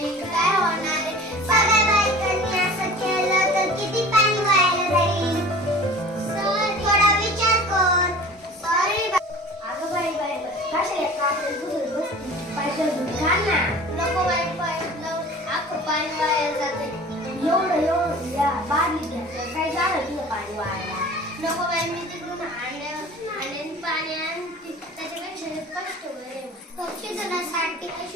काय होणार आहे? सगळ्या बायकांनी असं केलं तर किती पाणी वाया जाईल. थोडा विचार कर. सॉरी. अगं बाई बाई कशाला कापड बुजून बसती? पाहिजे घाल ना. नको बाई अख्खं पाणी वाया जाते. एवढं या बादली घ्या. काय झालं तुझं पाणी वाया? नको बाई, मी तिकडून आणि पाणी आणते. त्याच्यापेक्षा कष्ट बरे. पक्षी जणांसाठी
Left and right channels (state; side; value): normal; both; correlation 0.42